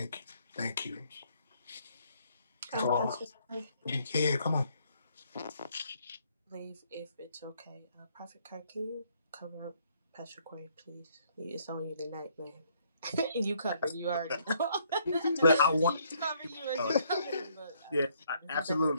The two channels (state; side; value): inverted; both; correlation -0.68